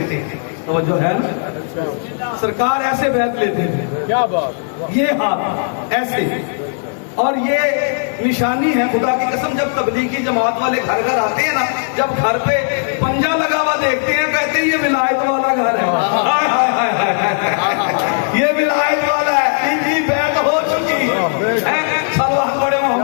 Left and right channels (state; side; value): silent; right; digital silence